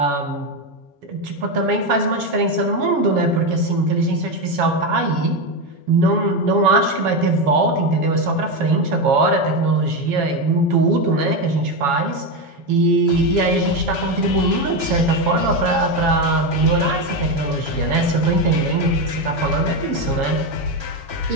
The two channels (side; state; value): left; late; 7.2 ms